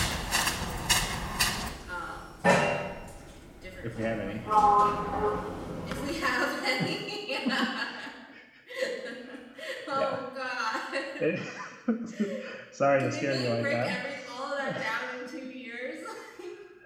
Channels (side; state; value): both; identical; correlation 1.00